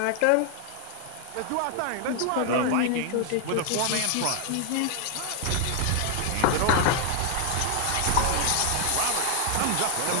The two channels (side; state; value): both; different; correlation 0.00